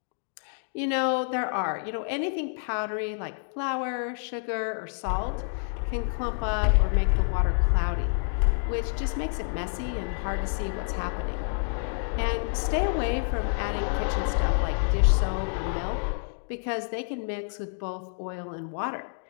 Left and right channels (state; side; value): silent; right; digital silence